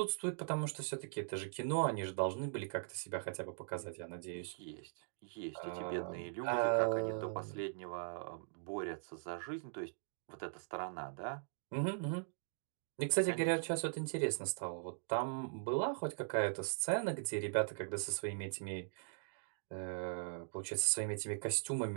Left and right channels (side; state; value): left; silent; digital silence